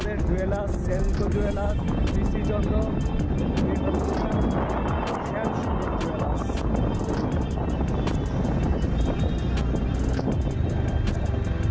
জুয়েলার্স, সেনকো জুয়েলার্স, পিসি চন্দ্র। এ হচ্ছে জুয়েলার্স।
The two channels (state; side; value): identical; both; correlation 1.00